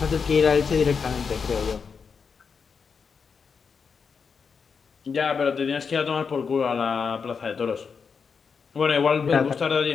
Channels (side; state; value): right; quieter; 5.8 dB